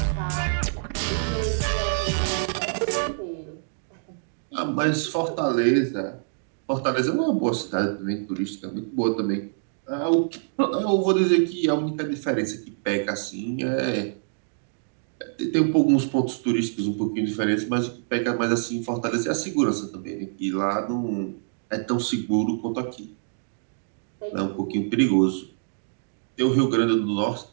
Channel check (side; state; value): left; silent; digital silence